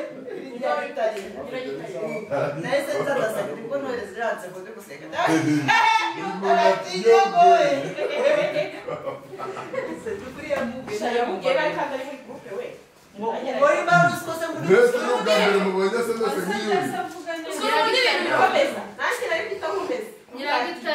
Nese tadasa kuko none ziranze ko guseka. Sekuri ya mugera Ya mugera kandi ari muri groupe we. Muri maso kose muri. Nese no gambere mu bwenge se nese ngiyo. Nanjye nari kwita nkumeze.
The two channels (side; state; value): both; identical; correlation 1.00